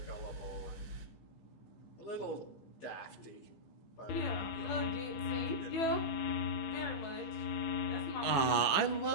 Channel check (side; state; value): right; late; 15 ms